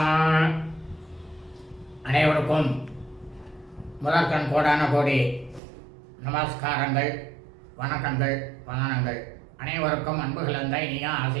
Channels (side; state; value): left; drops out; at 5.6 s